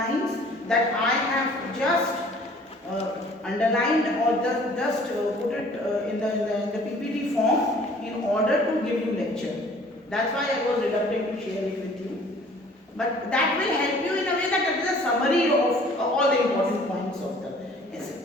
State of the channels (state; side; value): normal; both; correlation 0.53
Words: that I have just underlined or just put it in the PPT form in order to give you lecture. That's why I was reluctant to share it with you. But that will help you in a way that it is a summary of all the important points of the